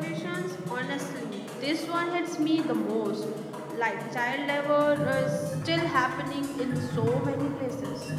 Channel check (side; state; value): both; identical; correlation 1.00